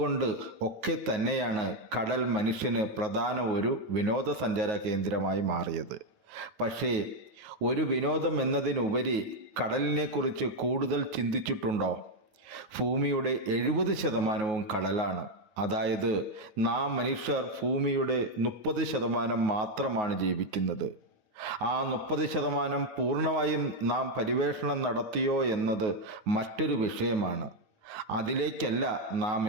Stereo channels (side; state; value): left; late; 9.4 ms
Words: ഒക്കെ തന്നെയാണ് കടൽ മനുഷ്യന് പ്രധാന ഒരു വിനോദസഞ്ചാര കേന്ദ്രമായി മാറിയത്. പക്ഷേ ഒരു വിനോദം എന്നതിനുപരി കടലിനെക്കുറിച്ച് കൂടുതൽ ചിന്തിച്ചിട്ടുണ്ടോ? ഭൂമിയുടെ 70% കടലാണ്. അതായത് നാം മനുഷ്യർ ഭൂമിയുടെ 30% മാത്രമാണ് ജീവിക്കുന്നത്. ആ 30% പൂർണ്ണമായും നാം പര്യവേഷണം നടത്തിയോ എന്നത് മറ്റൊരു വിഷയമാണ്. അതിലേക്കല്ല നാം